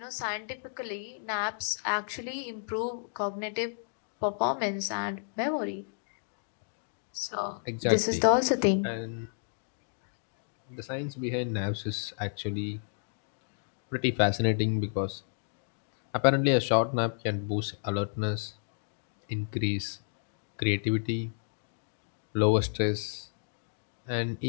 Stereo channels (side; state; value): right; silent; digital silence